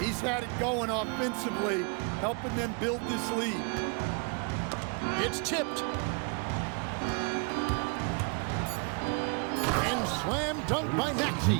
had it going offensively, helping them build this lead. It's tipped. And slam dunk by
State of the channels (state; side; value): quieter; left; 35.7 dB